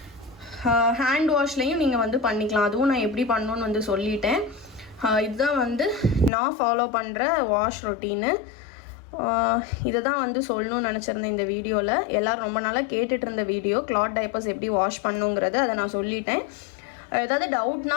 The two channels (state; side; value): drops out; right; at 6.3 s